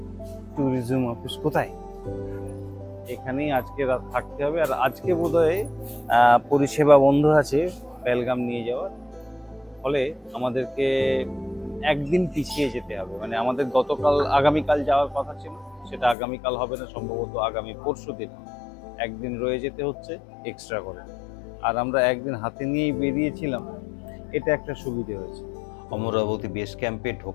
ট্যুরিজম অফিস কোথায়? এখানেই আজকে রাত থাকতে হবে। আর আজকে বোধহয় পরিষেবা বন্ধ আছে পেহেলগাম নিয়ে যাওয়ার। ফলে আমাদেরকে একদিন পিছিয়ে যেতে হবে। মানে আমাদের আগামীকাল যাওয়ার কথা ছিল, সেটা আগামীকাল হবে না, সম্ভবত আগামী পরশু দিন। একদিন রয়ে যেতে হচ্ছে এক্সট্রা করে। আর আমরা একদিন হাতে নিয়েই বেরিয়েছিলাম, এটা একটা সুবিধে হয়েছে। অমরাবতী বেস ক্যাম্পে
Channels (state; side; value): drops out; right; at 16.2 s